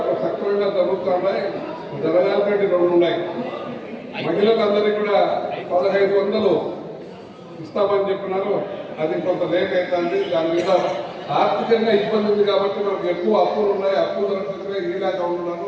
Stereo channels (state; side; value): identical; both; correlation 1.00